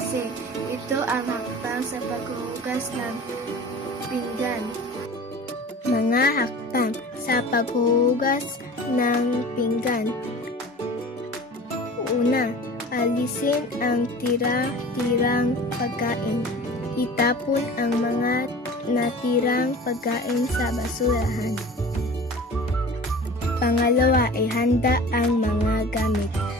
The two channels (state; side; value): normal; both; correlation 0.40